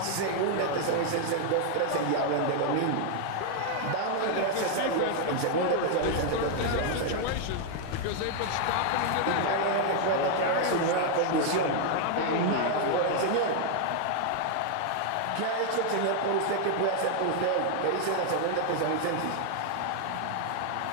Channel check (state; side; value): different; both; correlation 0.00